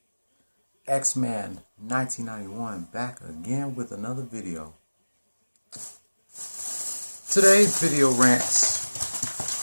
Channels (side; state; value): both; inverted; correlation -1.00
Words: X-Man 1991 back again with another video. Today's video rants